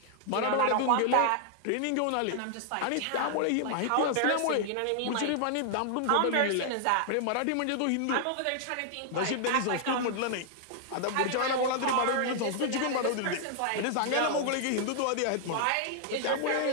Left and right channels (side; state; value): both; different; correlation -0.01